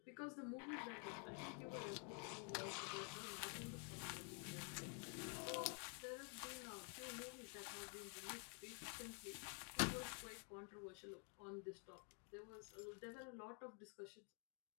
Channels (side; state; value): right; quieter; 38.8 dB